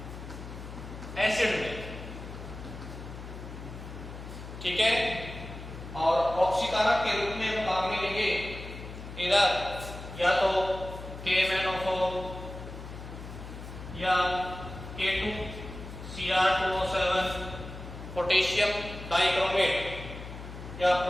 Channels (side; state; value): left; noise; hum, 11 dB below the sound